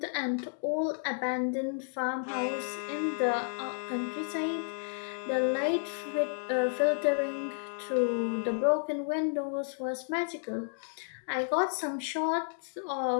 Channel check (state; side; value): silent; right; digital silence